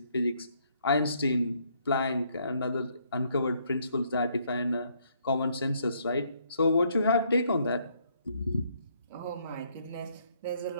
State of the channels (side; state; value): both; inverted; correlation -0.70